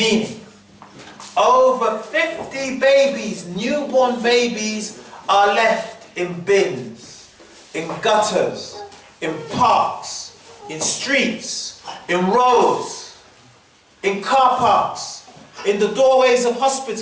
over 50 babies, newborn babies, are left in bins, in gutters, in parks, in streets, in roads, in car parks, in the doorways of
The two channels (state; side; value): identical; both; correlation 1.00